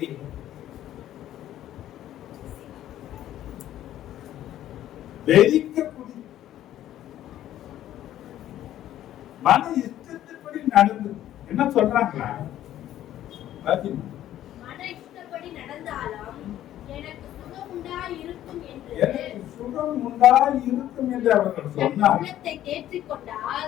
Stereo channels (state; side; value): quieter; right; 12.5 dB